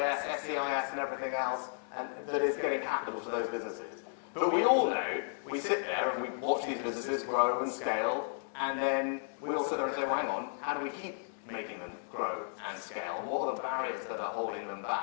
SEIS, and everything else, and that is getting capital to those businesses. But we all know, we sit there and we watch these businesses grow and scale, and then we all sit there and say, well, hang on, how do we keep making them grow and scale? What are the barriers that are holding them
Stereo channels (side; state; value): right; silent; digital silence